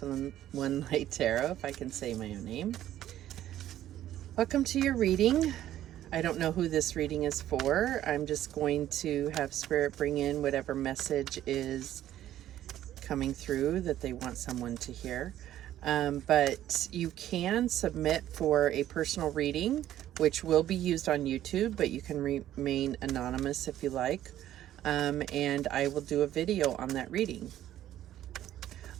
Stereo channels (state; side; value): quieter; left; 12.5 dB